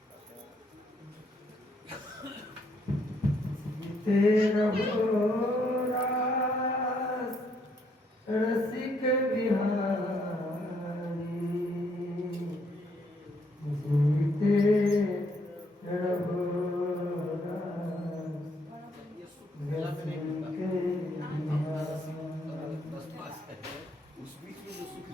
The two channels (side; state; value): both; normal; correlation 0.71